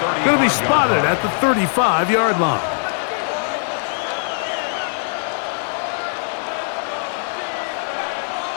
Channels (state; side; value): silent; right; digital silence